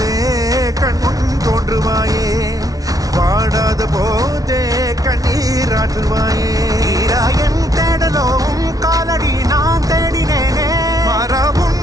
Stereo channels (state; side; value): late; left; 0.18 ms